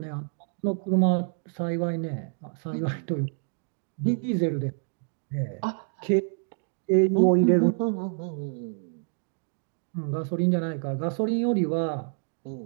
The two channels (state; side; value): silent; left; 58 dB below the other